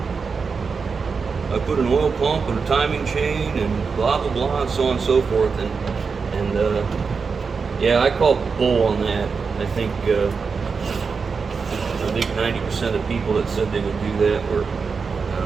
I put an oil pump and a timing chain and blah blah blah and so on and so forth. And yeah, I called bull on that. I think 90% of the people that said they would do that were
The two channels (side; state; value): left; quieter; 5.2 dB